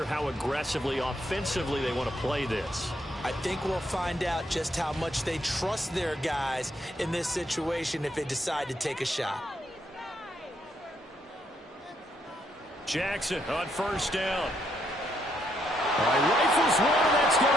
how aggressively, offensively they want to play this. I think we'll find out just how much they trust their guys in this situation if they decide to take a shot. Jackson on first down. Rifles one, that's going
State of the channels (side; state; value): both; normal; correlation 0.75